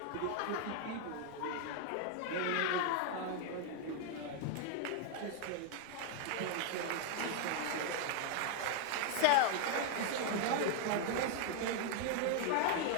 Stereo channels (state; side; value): different; both; correlation 0.00